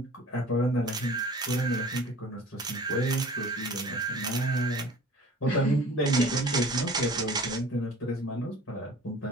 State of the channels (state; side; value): normal; both; correlation 0.45